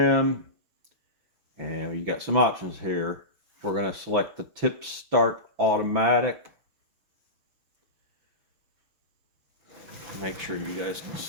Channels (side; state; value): left; late; 6.0 ms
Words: and you got some options here. We're going to select the tip start automatic. Make sure you guys can